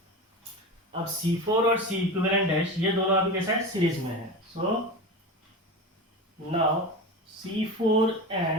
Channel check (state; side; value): normal; both; correlation 0.26